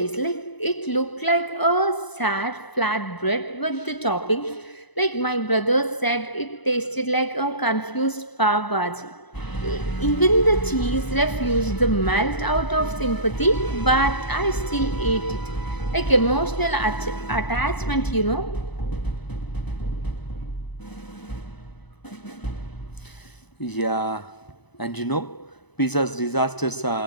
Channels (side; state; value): right; late; 1.0 ms